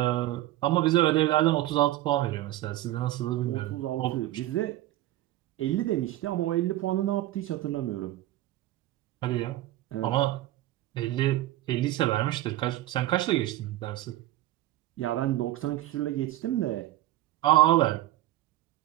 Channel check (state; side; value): quieter; left; 15.4 dB